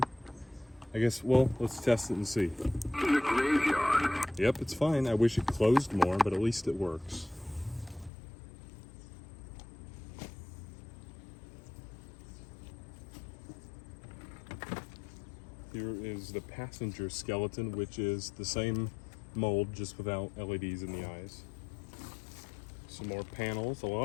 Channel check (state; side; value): drops out; right; at 8.1 s